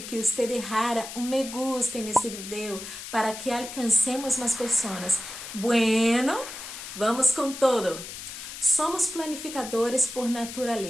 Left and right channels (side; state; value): left; noise; hiss, 10 dB below the sound